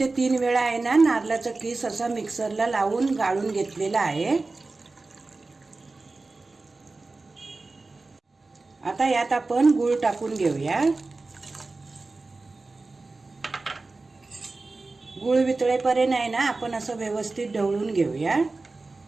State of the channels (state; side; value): quieter; left; 3.5 dB